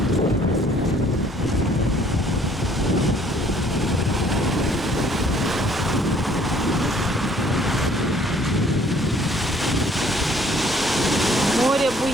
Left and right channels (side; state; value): both; normal; correlation 0.59